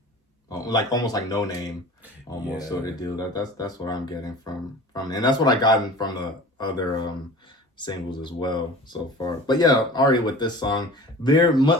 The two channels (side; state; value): both; normal; correlation 0.40